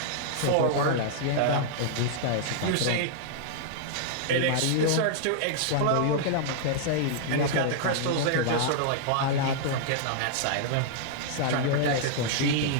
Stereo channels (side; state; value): both; different; correlation -0.01